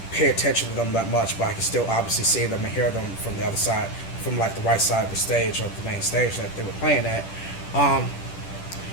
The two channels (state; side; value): late; right; 10 ms